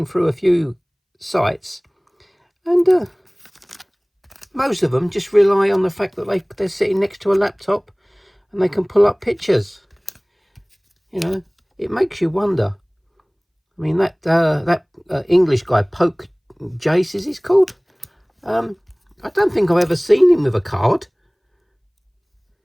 through a few sites, and most of them just rely on the fact that they're sitting next to a laptop and they can pull up pictures. You know, it makes you wonder. I mean, that English guy, Poke Jace, is he's called? I don't think I've ever seen him with a card.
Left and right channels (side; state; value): both; identical; correlation 1.00